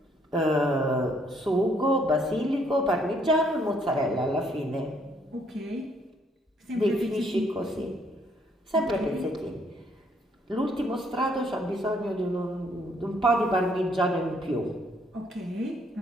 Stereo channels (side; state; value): both; normal; correlation 0.67